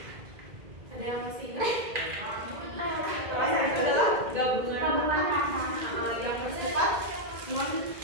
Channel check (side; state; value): left; late; 2.0 ms